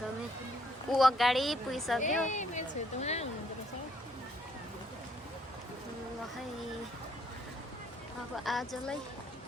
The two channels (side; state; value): both; normal; correlation 0.68